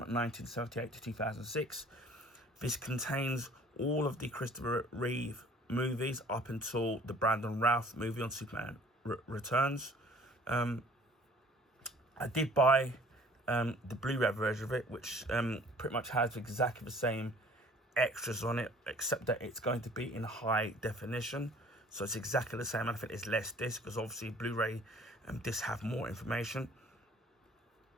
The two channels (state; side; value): normal; both; correlation 0.52